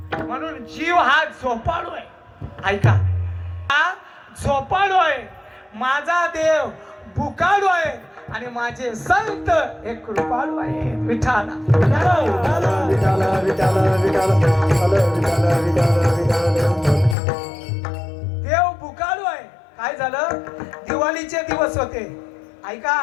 म्हणून जीव हा झोपाळू आहे. ऐका, हा झोपाळू आहे. माझा देव भुकाळू आहे आणि माझे संत हे कृपाळू आहे. विठाला देव भुकाळू आहे. काय झालं? दिवाळीचे दिवस होते.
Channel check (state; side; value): drops out; right; at 17.2 s